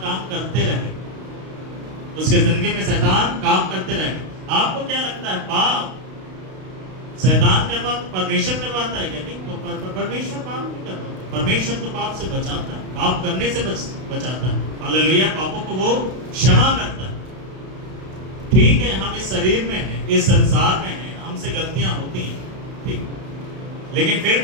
काम करते रहे, उसके जिंदगी में शैतान काम करते रहे। आपको क्या लगता है, पाप शैतान करवाता, परमेश्वर करवाता है क्या? नहीं, परमेश्वर पाप नहीं करवाता, परमेश्वर तो पाप से बचाता है, पाप करने से बचाता है। हालेलुया, पापों को वो क्षमा करता है। ठीक है, हम इस शरीर में हैं, इस संसार में हैं, हमसे गलतियां होती हैं, ठीक, लेकिन फिर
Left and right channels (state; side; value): late; left; 32 ms